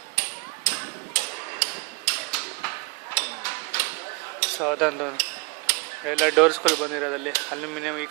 ಸೊ ಅದೊಂದು ಎಲ್ಲ ಡೋರ್ಸ್ಗಳು ಬಂದಿರೋದಲ್ಲಿ ಅಲ್ಯೂಮಿನಿಯಂ ಈ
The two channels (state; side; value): quieter; left; 28.4 dB